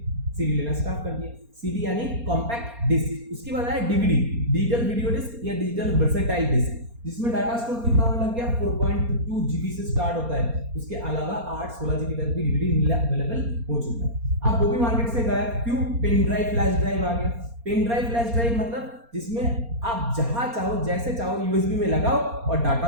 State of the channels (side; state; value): left; late; 4.3 ms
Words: लेना स्टार्ट कर दिया। सीडी यानी कॉम्पैक्ट डिस्क। उसके बाद आया डीवीडी, डिजिटल वीडियो डिस्क या डिजिटल वर्सेटाइल डिस्क, जिसमें डाटा स्टोर कितना होने लग गया, 4.2 GB से स्टार्ट होता है। उसके अलावा 8-16 GB तक भी डीवीडी अवेलेबल हो चुका है। अब वो भी मार्केट से गायब, क्यों? पेन ड्राइव फ्लैश ड्राइव आ गया। पेन ड्राइव फ्लैश ड्राइव मतलब जिसमें आप जहां चाहो जैसे चाहो यूएसबी में लगाओ और